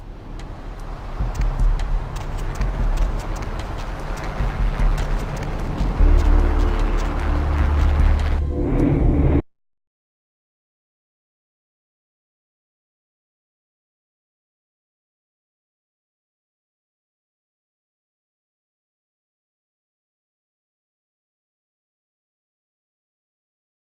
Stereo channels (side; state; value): both; identical; correlation 1.00